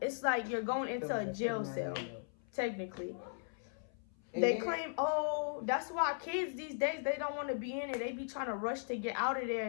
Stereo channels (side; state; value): right; silent; 53 dB below the other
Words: like you're going into a jail cell, technically. They claim, oh, that's why kids these days, they don't want to be in it. They be trying to rush to get out of there